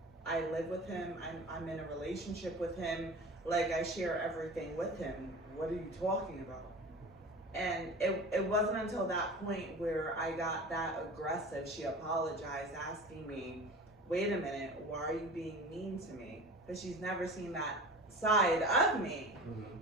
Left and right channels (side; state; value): both; normal; correlation 0.36